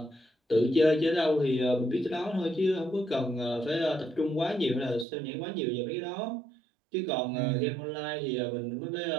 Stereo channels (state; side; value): drops out; left; at 5.1 s